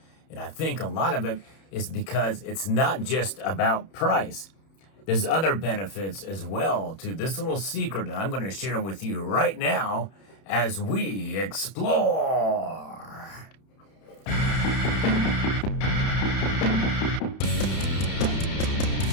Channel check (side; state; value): right; late; 31 ms